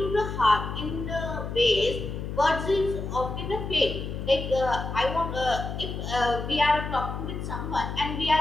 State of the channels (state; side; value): noise; left; hum, 6 dB below the sound